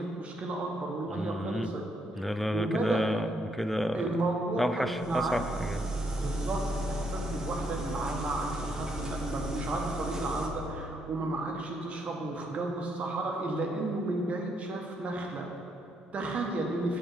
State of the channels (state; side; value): normal; both; correlation 0.75